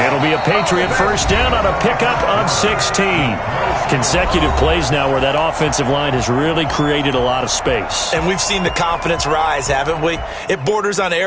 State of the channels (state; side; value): identical; both; correlation 1.00